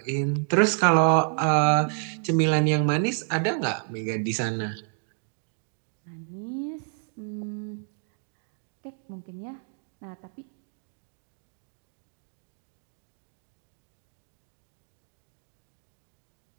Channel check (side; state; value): left; silent; 58 dB below the other